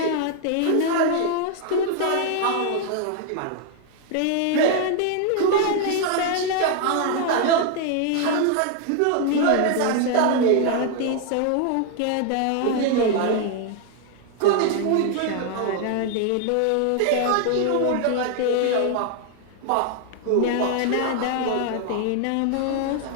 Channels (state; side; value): different; both; correlation 0.00